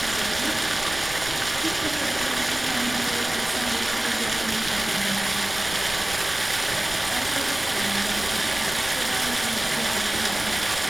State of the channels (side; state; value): right; noise; rumble, 14 dB below the sound